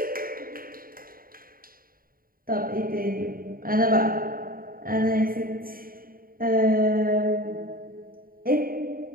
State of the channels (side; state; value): left; late; 0.42 ms